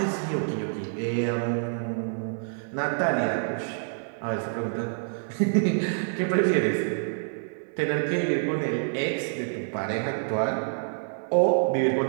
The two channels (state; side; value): silent; left; digital silence